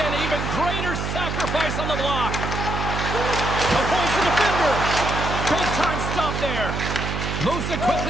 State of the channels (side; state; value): right; noise; hum, 3 dB below the sound